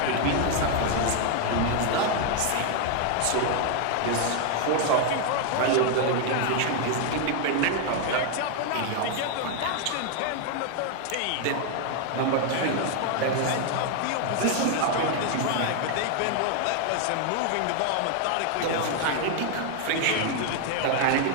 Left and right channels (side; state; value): both; different; correlation 0.00